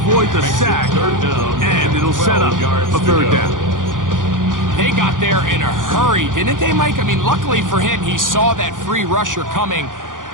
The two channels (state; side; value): late; left; 0.89 ms